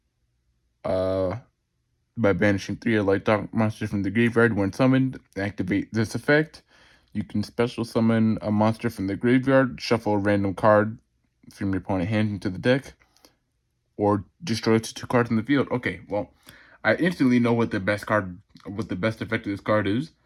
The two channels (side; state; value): both; identical; correlation 1.00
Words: By banishing 3 light dark monsters from the graveyard when summoned, activate this effect. You can special summon a monster from the graveyard, shuffle a random card from your opponent's hand into the deck, or destroy 2 cards in the field. Okay, well, I instantly know what the best effect of this card is.